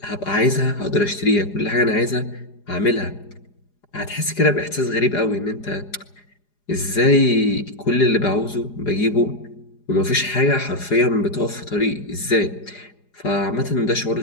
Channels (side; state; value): right; late; 4.9 ms